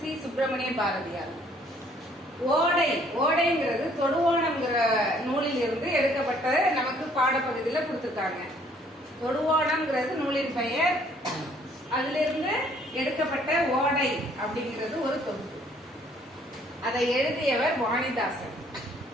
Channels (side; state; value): both; normal; correlation 0.62